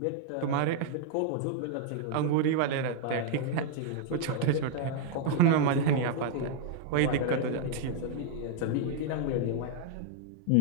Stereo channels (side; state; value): both; different; correlation 0.00